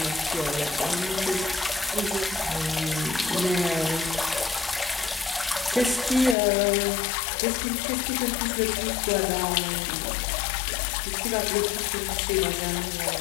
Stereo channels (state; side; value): drops out; right; at 6.4 s